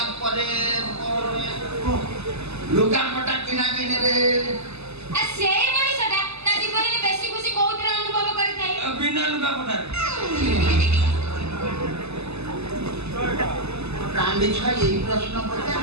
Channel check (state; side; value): late; left; 0.80 ms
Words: ପରେ ଲୁଗାପଟା କିଣା କିଣିରେ ଆଉ ସେଇ ମଣିଷଟା ତା ଜୀବନରେ ବେଶୀ ଖୁସି କୋଉଥିରେ ଅନୁଭବ କରିଥାଏ ବିନା ଲୁଗାପଟାରେ ପ୍ରାଣୀ ଛୁଆ ଏଇ ପ୍ରଶ୍ନ